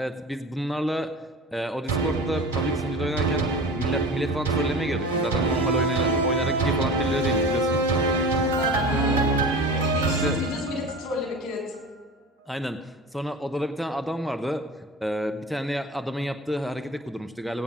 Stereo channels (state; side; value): normal; both; correlation 0.36